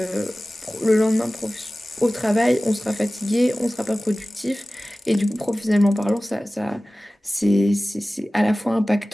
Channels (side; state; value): both; normal; correlation 0.97